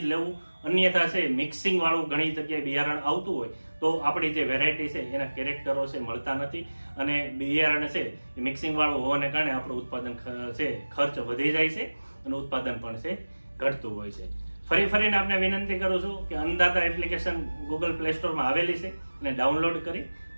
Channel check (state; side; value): inverted; both; correlation -1.00